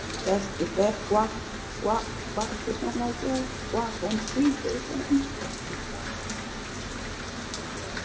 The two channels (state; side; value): identical; both; correlation 1.00